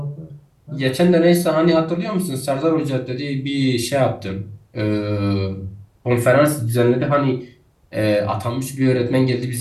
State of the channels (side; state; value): both; identical; correlation 1.00